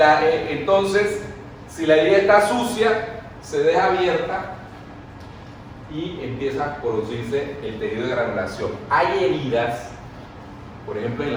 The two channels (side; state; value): both; identical; correlation 1.00